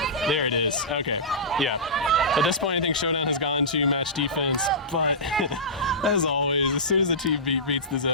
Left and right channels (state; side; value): normal; both; correlation -0.19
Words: There it is. Okay. Yeah. At this point, I think Showdown has gone to match defense, but as always, as soon as the team beats the